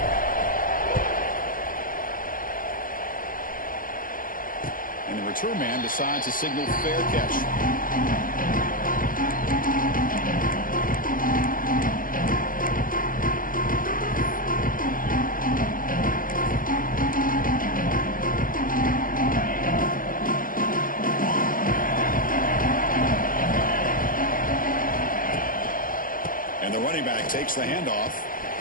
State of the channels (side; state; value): right; late; 0.40 ms